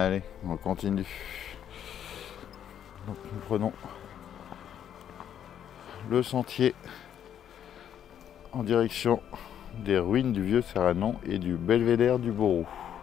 on continue. Donc nous prenons le sentier en direction des ruines du vieux Serranon et du belvédère du Borou.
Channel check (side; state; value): right; quieter; 9.6 dB